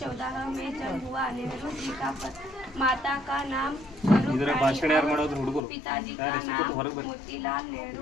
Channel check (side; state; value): right; drops out; at 5.6 s